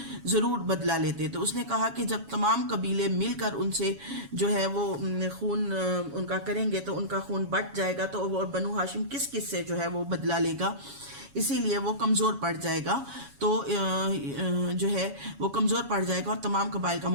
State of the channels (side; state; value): left; late; 7.2 ms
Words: ضرور بدلہ لیتے۔ تو اس نے کہا کہ جب تمام قبیلے مل کر ان سے جو ہے وہ خون ان کا کریں گے تو ان کا خون بٹ جائے گا، تو بنو ہاشم کس کس سے جو ہے وہ بدلہ لے گا، اسی لیے وہ کمزور پڑ جائے گا، تو جو ہے وہ کمزور پڑ جائے گا اور تمام قبائل کا